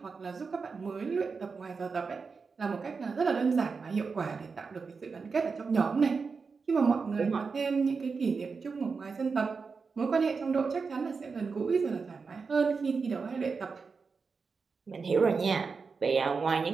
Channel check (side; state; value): left; quieter; 4.9 dB